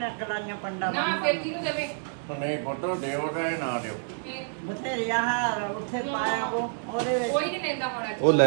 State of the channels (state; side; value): silent; left; digital silence